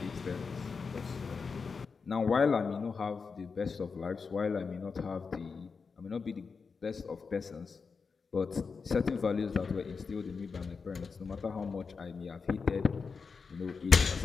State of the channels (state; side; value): quieter; right; 5.1 dB